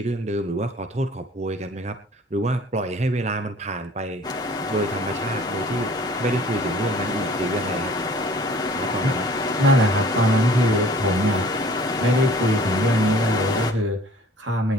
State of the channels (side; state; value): both; normal; correlation 0.51